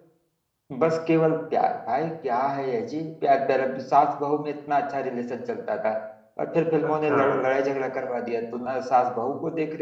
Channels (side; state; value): both; identical; correlation 1.00